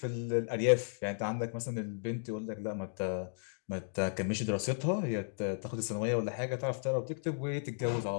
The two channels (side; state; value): right; silent; digital silence